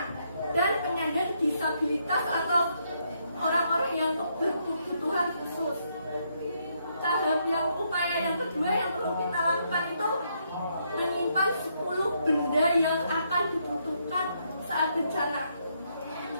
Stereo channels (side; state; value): both; inverted; correlation -0.75